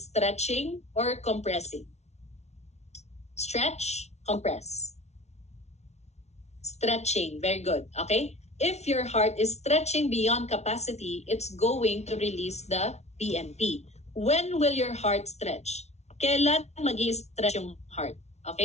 stretching or compressing. Stretch, compress. Stretching, very good, okay? If your heart is stretching beyond capacity, it's going to release the BNP. When will your heart stretch? Kailan mag-i-stretch yung heart,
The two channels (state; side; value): late; right; 0.32 ms